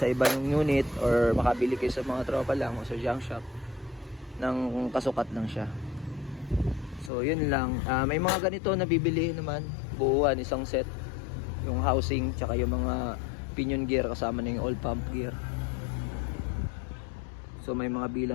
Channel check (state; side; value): drops out; right; at 7.1 s